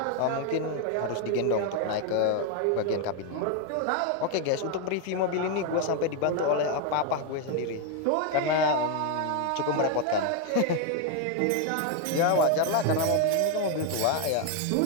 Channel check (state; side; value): different; both; correlation 0.01